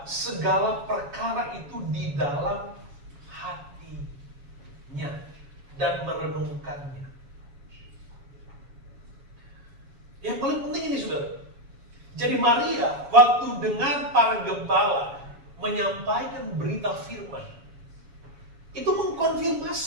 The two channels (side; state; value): left; late; 7.2 ms